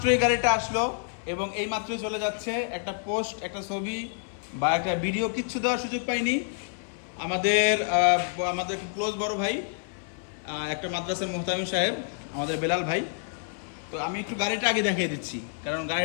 গাড়িটা আসলো এবং এই মাত্রই চলে যাচ্ছে। একটা পোস্ট, একটা ছবি বা একটা ভিডিও কিচ্ছু দেওয়ার সুযোগ পাইনি। আমাদের খুব ক্লোজ বড় ভাই, একটা মাদ্রাসার মোহতামিম সাহেব, আমাদের বেলাল ভাই। তো আমি একটু গাড়িটা আগে দেখিয়ে দিচ্ছি, কারণ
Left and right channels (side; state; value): right; silent; 59 dB below the other